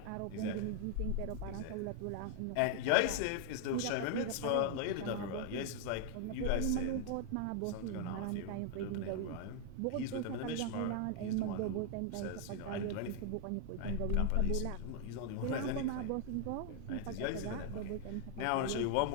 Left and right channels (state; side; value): different; both; correlation 0.00